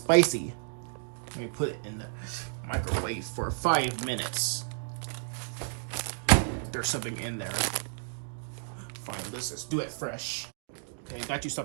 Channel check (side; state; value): left; silent; digital silence